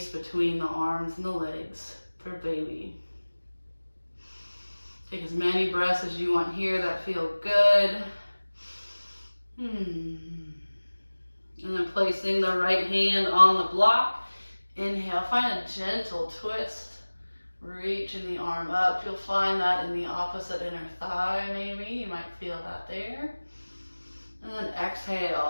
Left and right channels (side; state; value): both; inverted; correlation -1.00